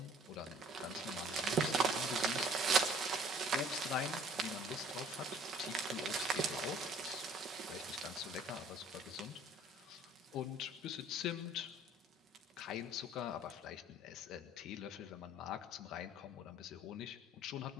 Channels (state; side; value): normal; both; correlation 0.54